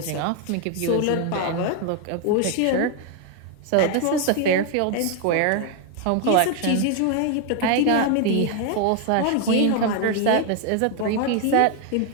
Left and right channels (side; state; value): both; different; correlation 0.01